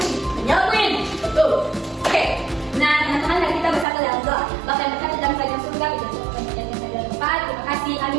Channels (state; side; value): drops out; left; at 3.9 s